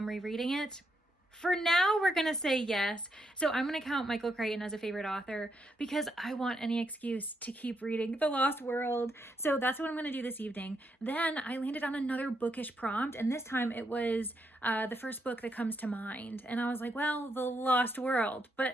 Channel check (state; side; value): normal; both; correlation 0.79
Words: rereading it? For now, we're going to say yes. So I'm going to count Michael Crichton as a favorite author because I want any excuse to keep reading The Lost World. So that's what I'm going to do this evening. Then I landed on another bookish prompt, and this time it was the first book that comes to mind. And I was like, well, The Lost World.